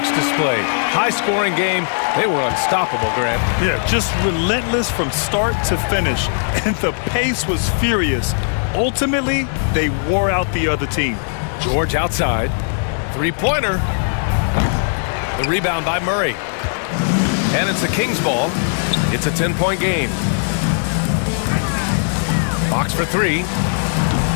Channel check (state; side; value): silent; right; digital silence